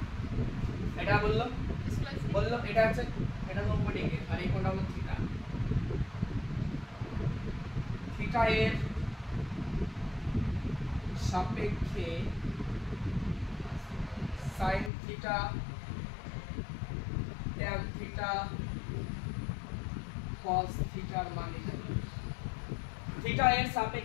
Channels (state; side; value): drops out; right; at 14.9 s